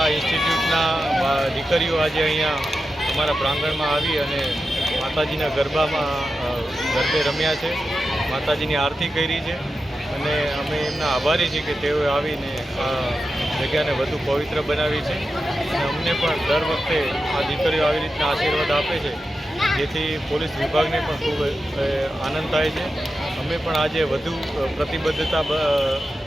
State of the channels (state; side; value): normal; both; correlation 0.91